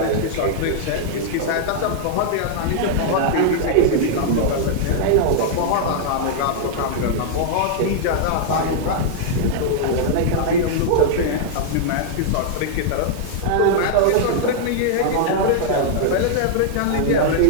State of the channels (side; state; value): both; different; correlation -0.01